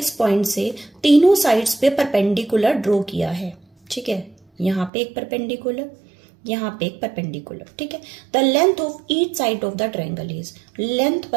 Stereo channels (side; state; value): left; drops out; at 4.9 s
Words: पॉइंट से तीनों साइड्स पे परपेंडिकुलर ड्रॉ किया है, ठीक है। यहाँ पे एक परपेंडिकुलर, यहाँ पे एक परपेंडिकुलर, ठीक है। The length of each side of the triangle is, length